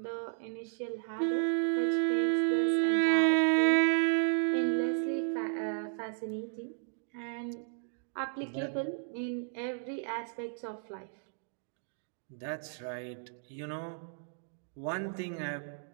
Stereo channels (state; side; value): silent; left; digital silence